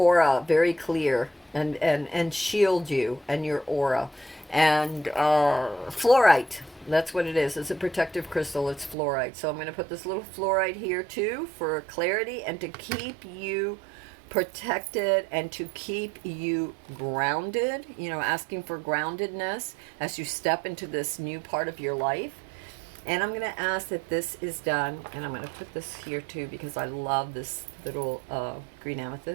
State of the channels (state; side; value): drops out; left; at 9.0 s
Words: very clear and shield you and your aura. And fluorite, that's what it is. It's a protective crystal. It's fluorite. So I'm going to put this little fluorite here too for clarity and to keep you protected and to keep you grounded, you know, asking for groundedness as you step into this new part of your life. And I'm going to ask that this is done, and I'm going to put this here too because I love this little green